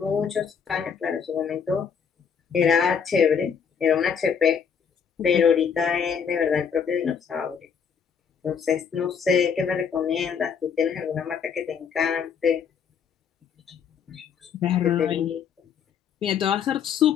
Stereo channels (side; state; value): right; quieter; 6.9 dB